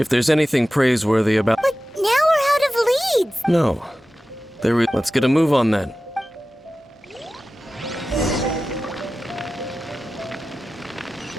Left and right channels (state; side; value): normal; both; correlation 0.95